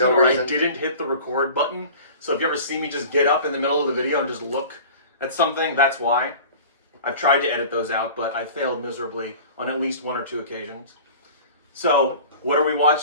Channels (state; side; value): inverted; both; correlation -0.41